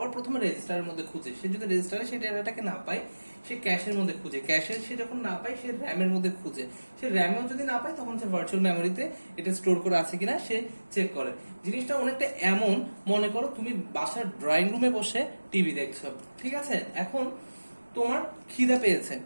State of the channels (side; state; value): both; inverted; correlation -1.00